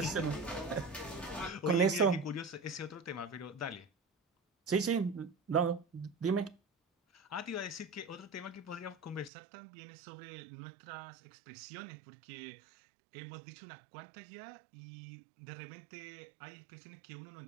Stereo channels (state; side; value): drops out; left; at 9.3 s